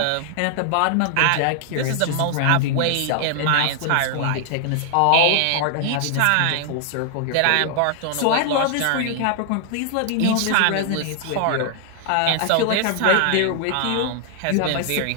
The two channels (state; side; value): different; both; correlation 0.00